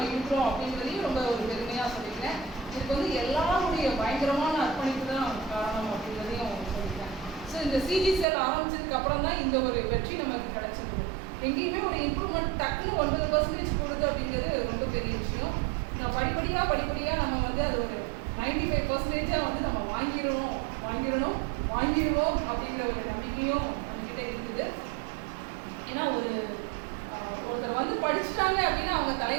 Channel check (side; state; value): left; drops out; at 8.2 s